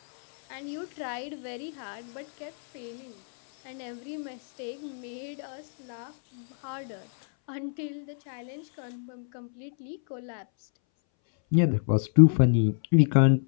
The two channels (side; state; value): right; silent; 60 dB below the other